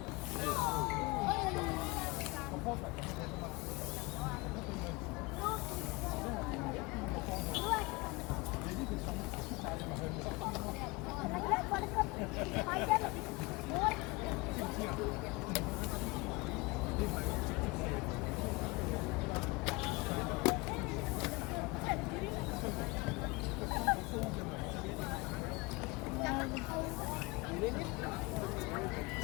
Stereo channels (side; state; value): right; quieter; 24.6 dB